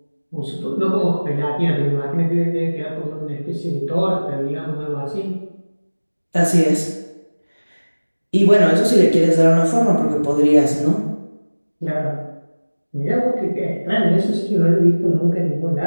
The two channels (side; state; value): both; inverted; correlation -1.00